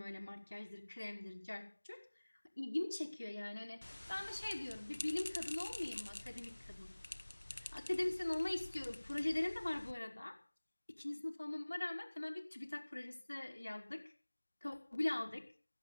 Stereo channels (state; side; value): inverted; both; correlation -1.00